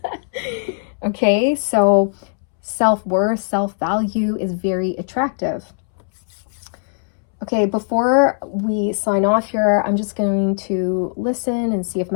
Okay, so self-worth, self-value is very attractive. Okay, before we sign off here, I'm just going to listen and see if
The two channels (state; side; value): silent; right; 66 dB below the other